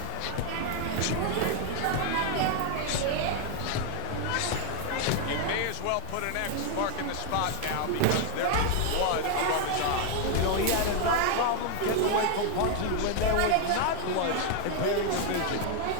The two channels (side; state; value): both; different; correlation 0.00